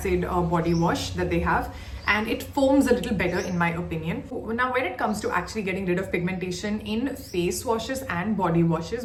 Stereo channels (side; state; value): both; identical; correlation 1.00